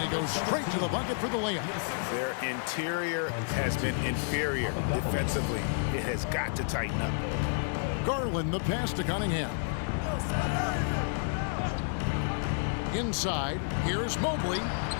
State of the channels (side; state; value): right; silent; digital silence